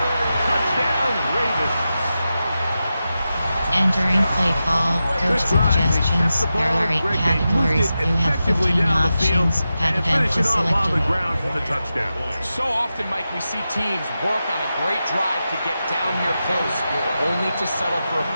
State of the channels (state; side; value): inverted; both; correlation -0.91